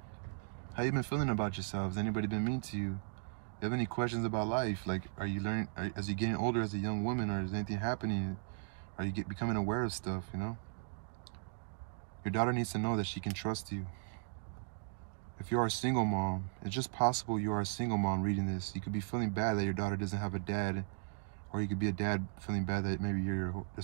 How you been feeling about yourself? Has anybody been mean to you? You have any questions about life? Like, are you learning, as you're getting older as a young woman, or is anything happening? Are you becoming aware of stuff, you know? Your daughter needs to know that she can trust you. If you are a single mom, it's just possible you are a single mom reading this. You could be feeling bad that your daughter doesn't have a dad, or you could be a dad feeling bad that maybe you're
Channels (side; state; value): left; silent; digital silence